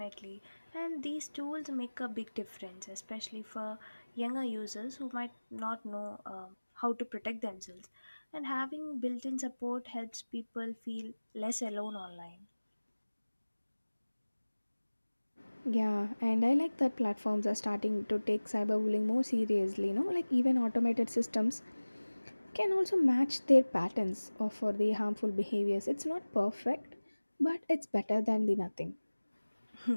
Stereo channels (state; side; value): inverted; both; correlation -1.00